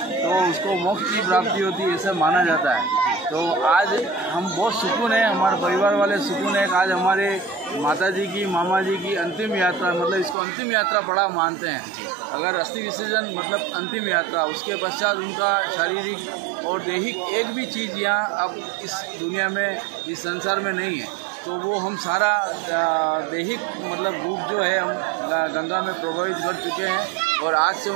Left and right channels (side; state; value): left; drops out; at 10.4 s